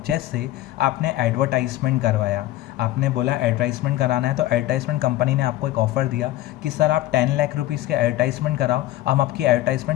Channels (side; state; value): right; quieter; 15.4 dB